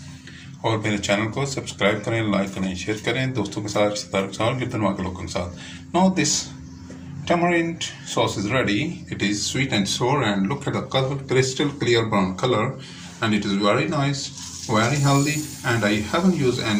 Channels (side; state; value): both; identical; correlation 1.00